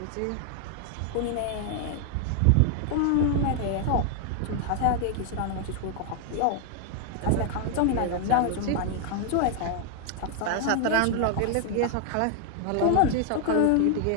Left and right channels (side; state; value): both; different; correlation 0.00